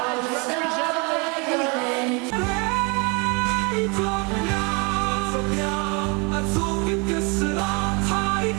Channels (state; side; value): quieter; left; 30.9 dB